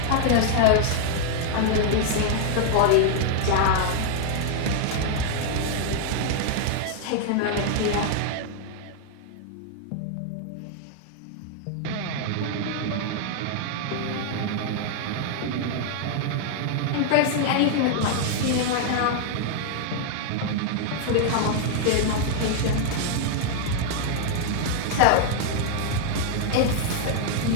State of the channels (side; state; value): both; different; correlation 0.00